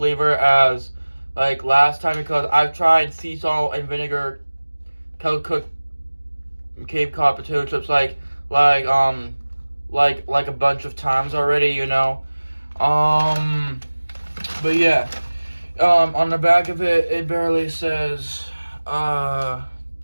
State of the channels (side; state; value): both; inverted; correlation -1.00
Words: as like last time, because I've tried sea salt and vinegar Kettle Cooked Cape Cod potato chips like a bunch of times already, you know. But yeah, on the back of it, it barely says,